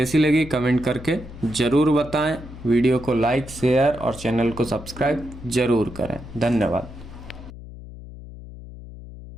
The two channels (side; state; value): left; noise; hum, 15 dB below the sound